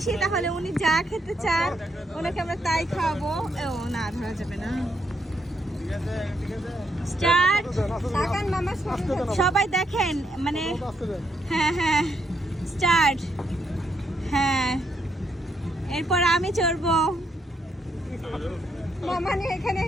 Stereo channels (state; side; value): normal; both; correlation 0.77